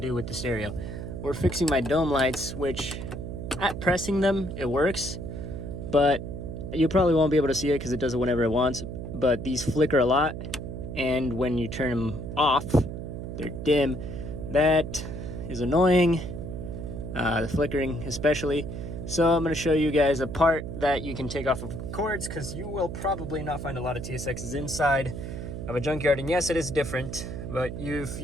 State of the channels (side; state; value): right; noise; hum, 7 dB below the sound